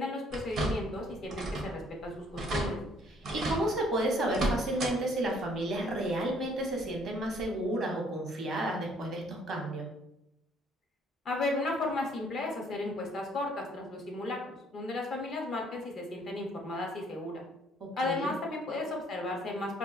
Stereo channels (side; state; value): both; normal; correlation 0.63